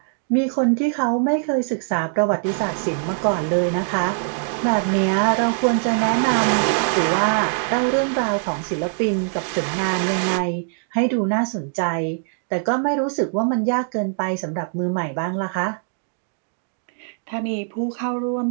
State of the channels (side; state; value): left; silent; digital silence